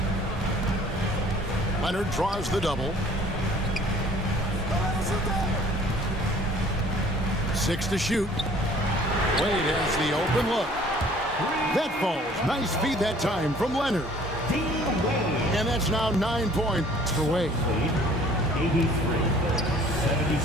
Leonard draws the double. 6 to shoot. Wade has the open look. That falls. Nice feed that time from Leonard. And that's now 9 points for Wade.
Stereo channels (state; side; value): normal; both; correlation 0.54